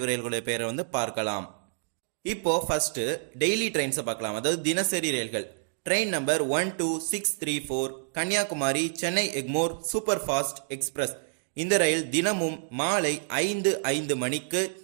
ரயில்களுடைய பெயரை வந்து பார்க்கலாம். இப்போ ஃபர்ஸ்ட் டெய்லி ட்ரெயின்ஸை பார்க்கலாம், அதாவது தினசரி ரயில்கள். Train number 12634 Kanyakumari Chennai Egmore super fast express. இந்த ரயில் தினமும் மாலை 5:05 மணிக்கு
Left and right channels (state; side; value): silent; left; digital silence